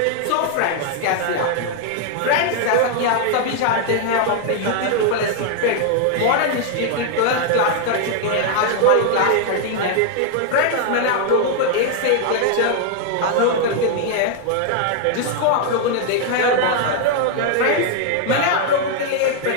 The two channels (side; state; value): both; different; correlation 0.00